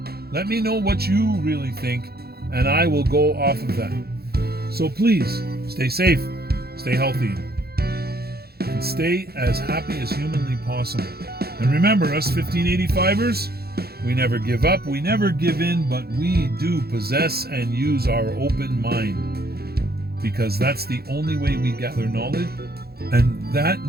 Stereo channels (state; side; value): late; left; 0.46 ms